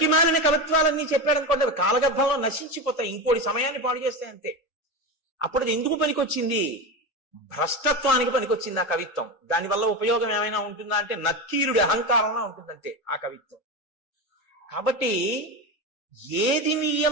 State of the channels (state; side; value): late; right; 3.8 ms